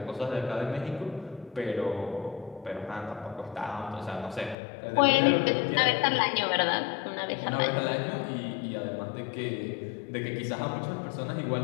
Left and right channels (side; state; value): right; drops out; at 4.5 s